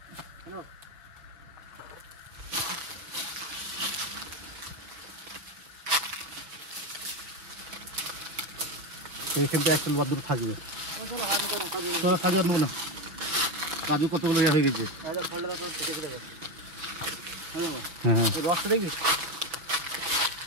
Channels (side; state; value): left; late; 6.3 ms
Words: হ্যালো এইখান থেকে একটা বাদ দুটো থাকবে চলো হাত করো কাজে চলো কাজু আর নেবো না কাজু কতগুলো ইয়ে হয়ে গেছে আরে ফলটা তারপর কেটে দেবো হ্যালো হ্যাঁ এই রসটা দেখবি